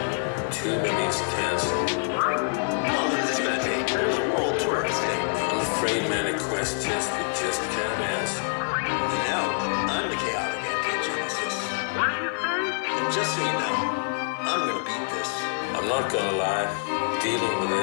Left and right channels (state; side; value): silent; right; 60 dB below the other